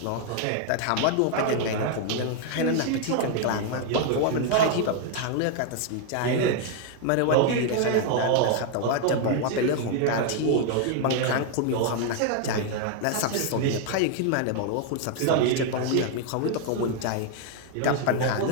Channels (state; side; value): different; both; correlation 0.00